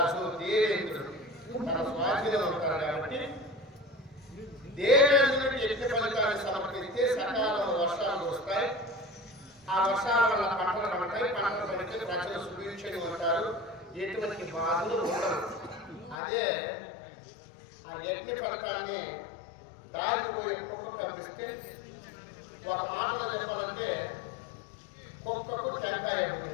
దేవేంద్రుడు తన స్వాధీనంలో ఉంటాడు కాబట్టి దేవేంద్రుడికి యజ్ఞ ఫలితాన్ని సమర్పిస్తే సకాలంలో వర్షాలు వస్తాయి. ఆ వర్షాల వల్ల పంటలు పండుతాయి. పంటలు పండితే ప్రజలు సుభిక్షంగా ఉంటారు. ఎటువంటి బాధలు ఉండవు. అదే ఆ యజ్ఞ ఫలితాన్ని దారిపోయే కుక్క కనిపిస్తే ఒక మాటలో చెప్పాలంటే కుక్కకు టెంకాయ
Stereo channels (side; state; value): right; drops out; at 16.2 s